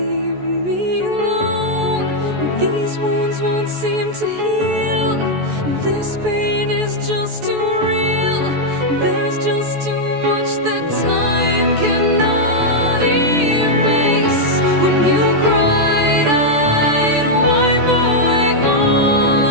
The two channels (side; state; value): left; late; 14 ms